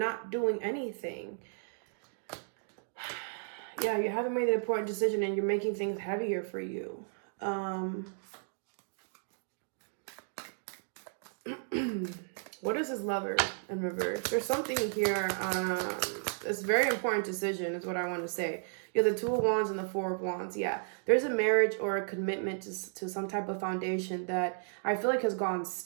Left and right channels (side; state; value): left; silent; digital silence